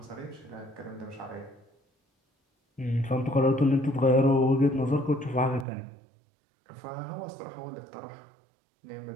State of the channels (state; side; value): drops out; left; at 5.7 s